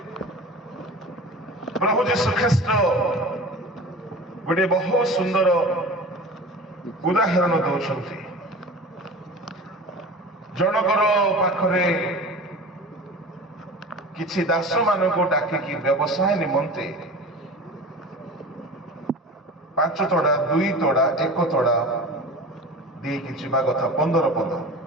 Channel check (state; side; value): normal; both; correlation 0.36